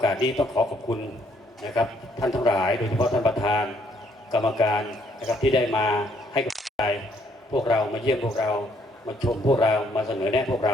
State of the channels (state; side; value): normal; both; correlation 0.68